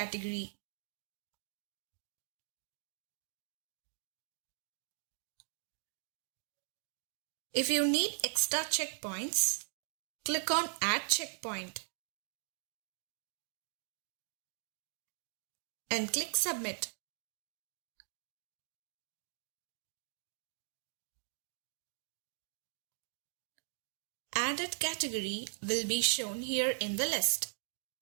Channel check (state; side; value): silent; left; digital silence